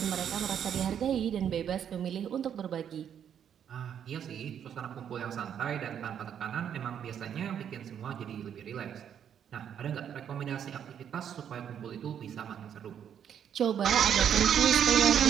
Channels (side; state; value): left; quieter; 8.8 dB